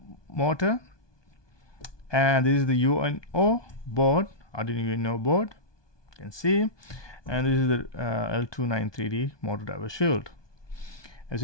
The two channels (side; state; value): right; late; 1.2 ms